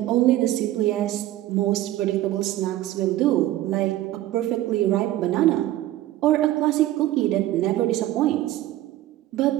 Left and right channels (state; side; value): quieter; left; 14.6 dB